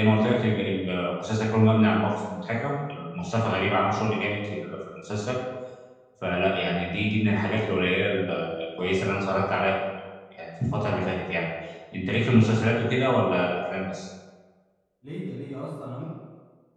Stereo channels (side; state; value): both; identical; correlation 1.00